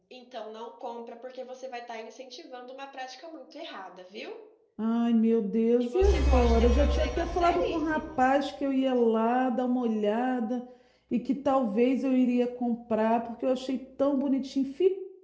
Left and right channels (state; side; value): identical; both; correlation 1.00